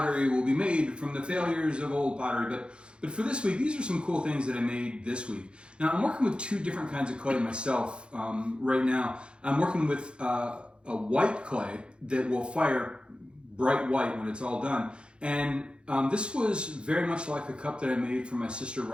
will be made from the failures of old pottery. But for this week, these are some cool things that I made this week. Now, I'm working with two different kinds of clay myself right now. I'm working with a white clay that will fire bright white when it's all done. And this was very much like a cup that I made for my sister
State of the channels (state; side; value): late; left; 0.055 ms